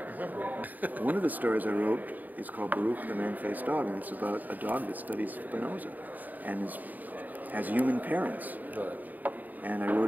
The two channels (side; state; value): left; late; 0.083 ms